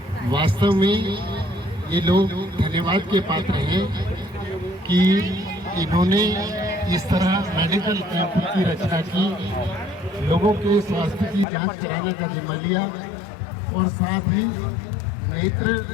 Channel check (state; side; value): drops out; right; at 11.5 s